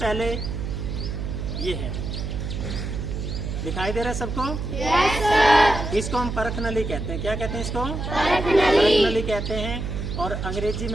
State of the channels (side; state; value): right; noise; hum, 4 dB below the sound